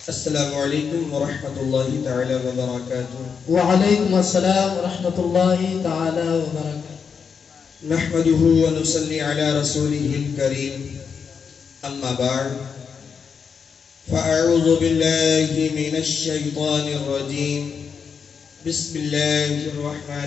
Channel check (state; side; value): quieter; right; 6.2 dB